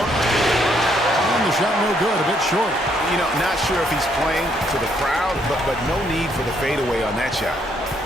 And the shot no good, a bit short. You know, not sure if he's playing to the crowd, but no need for the fadeaway on that shot.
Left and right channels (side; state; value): both; normal; correlation 0.71